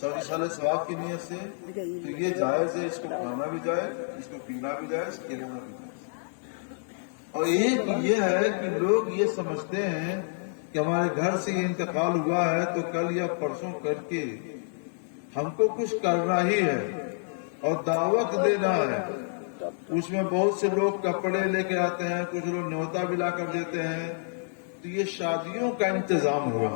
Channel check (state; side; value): silent; right; digital silence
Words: ثواب کی نیت سے، تو یہ جائز ہے، اس کو کھانا بھی جائز، اس کو پینا بھی جائز، کھلانا بھی جائز۔ اور ایک یہ ہے کہ لوگ یہ سمجھتے ہیں کہ ہمارے گھر سے یہ انتقال ہوا ہے تو کل یا پرسوں کر کے ہم کو کچھ کرنا ہی ہے اور دعوت دینا ہے۔ اس میں بہت سے لوگ کپڑے لے کے آتے ہیں، کچھ لوگ نیوتا بھی لا کر دیتے ہیں، تو یہ شادیوں کا انتظام ہوا۔